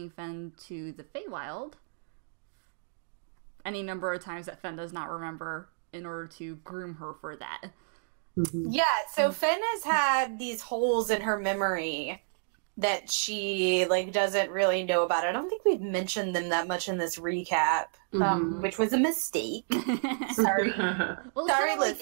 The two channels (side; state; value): left; silent; digital silence